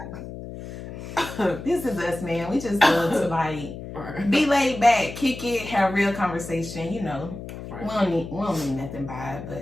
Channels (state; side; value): noise; left; hum, 11 dB below the sound